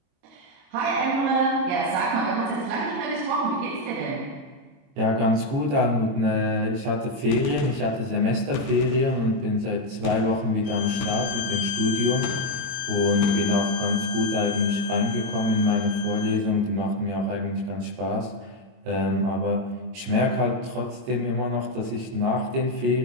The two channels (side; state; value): left; late; 22 ms